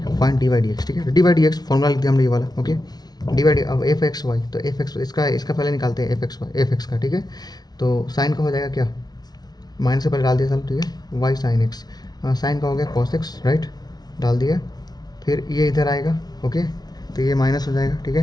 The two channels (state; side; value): late; right; 0.19 ms